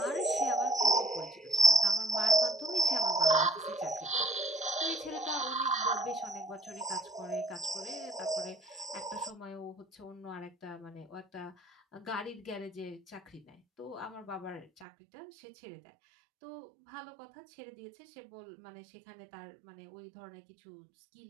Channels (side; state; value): left; drops out; at 14.9 s